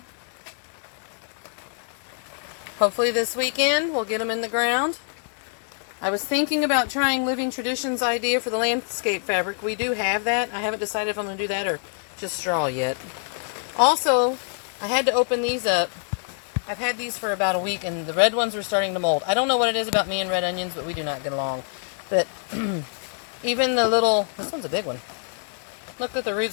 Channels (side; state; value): right; silent; 58 dB below the other